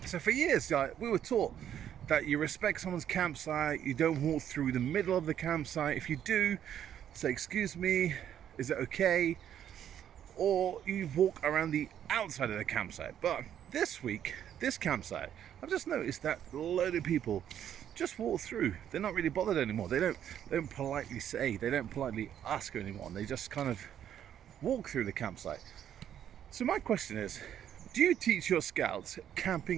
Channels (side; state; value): left; quieter; 10.0 dB